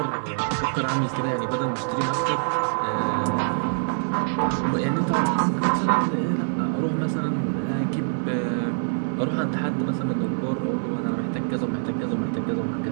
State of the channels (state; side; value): silent; left; digital silence